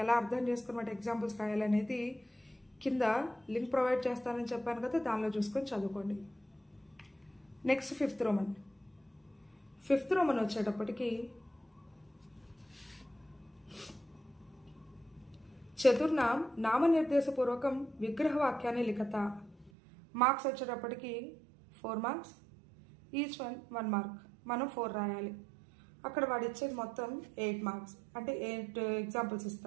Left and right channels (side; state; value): left; drops out; at 19.7 s